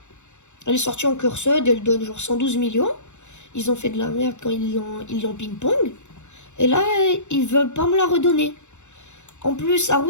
Elle est sortie en curseur, elle donne genre 112 millions. Ils ont fait de la merde quand ils l'ont ping-pong. Et là, ils veulent pas me la redonner. En plus,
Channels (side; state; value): right; late; 0.84 ms